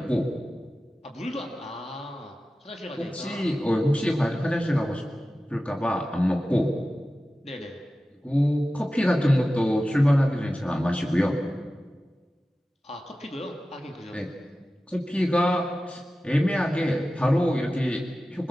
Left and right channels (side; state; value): both; normal; correlation 0.95